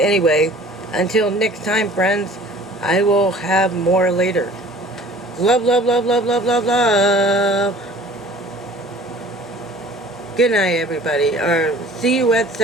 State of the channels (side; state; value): both; normal; correlation 0.48